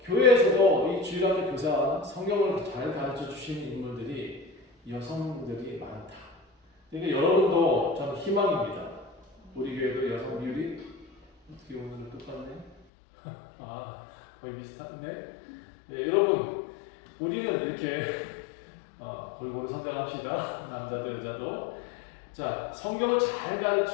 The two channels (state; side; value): drops out; right; at 12.8 s